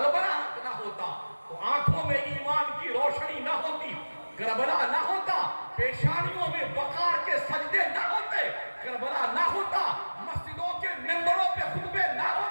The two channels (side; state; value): both; inverted; correlation -1.00